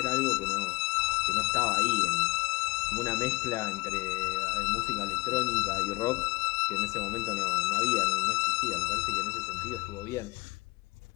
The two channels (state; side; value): quieter; right; 23.5 dB